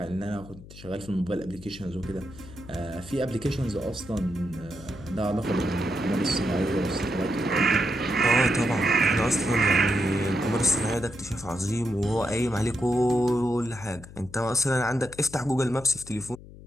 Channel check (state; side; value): noise; left; hum, 17 dB below the sound